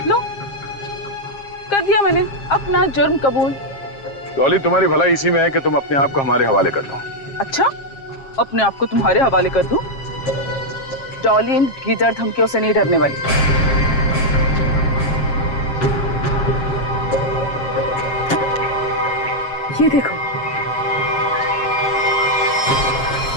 लो, कर दिया मैंने अपना जुर्म कबूल। डॉली, तुम्हारी भलाई इसी में है कि तुम अपने आप को हमारे हवाले कर दो। अच्छा, अपने आप को तुम्हारे हवाले कर दूं? डॉली इन गीदड़ धमकियों से नहीं डरने वाली। ये देखो,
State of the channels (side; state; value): right; late; 7.4 ms